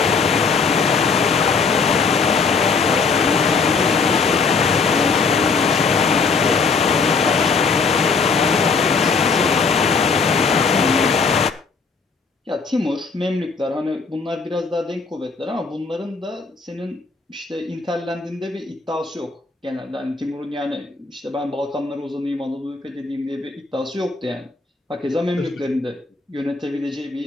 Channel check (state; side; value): quieter; right; 4.9 dB